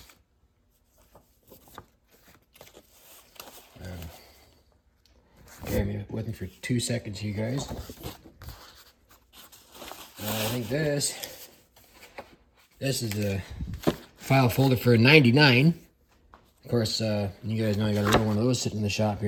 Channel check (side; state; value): both; identical; correlation 1.00